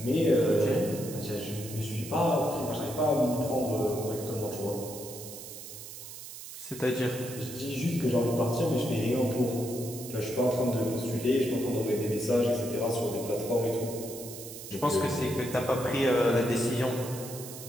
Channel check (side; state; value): right; noise; hiss, 12 dB below the sound